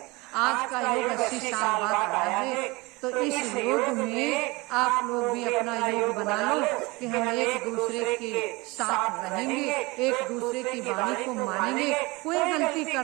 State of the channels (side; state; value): left; quieter; 24.0 dB